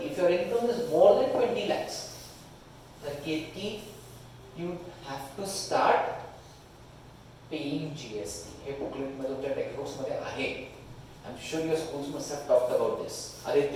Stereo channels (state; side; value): identical; both; correlation 1.00